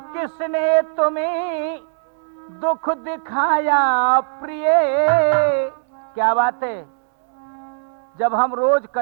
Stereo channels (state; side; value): silent; left; digital silence